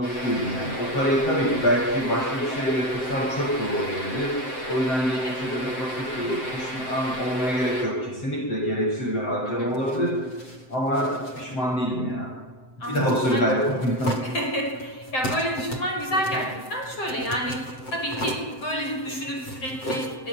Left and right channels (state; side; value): late; right; 7.7 ms